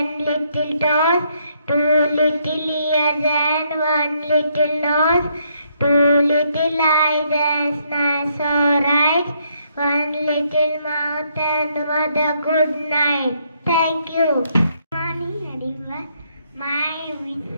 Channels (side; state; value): both; inverted; correlation -0.73